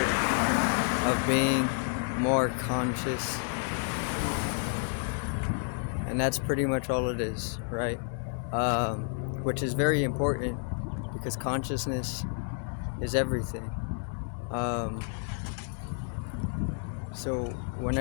of being more conscious, and that's pretty much all it is, right? Which is very important because consciousness is everything. So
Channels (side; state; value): right; silent; 58 dB below the other